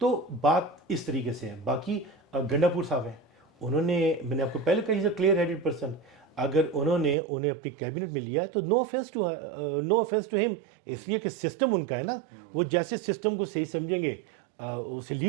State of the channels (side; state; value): left; drops out; at 7.2 s